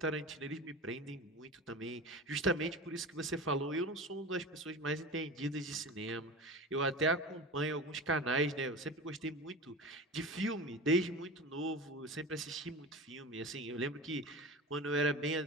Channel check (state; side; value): normal; both; correlation 0.31